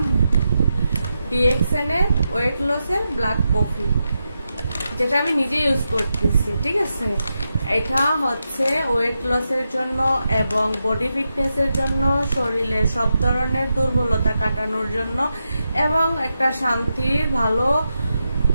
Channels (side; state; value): both; inverted; correlation -0.87